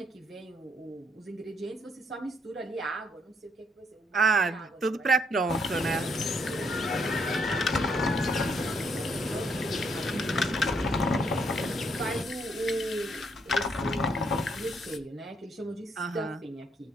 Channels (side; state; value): both; normal; correlation 0.72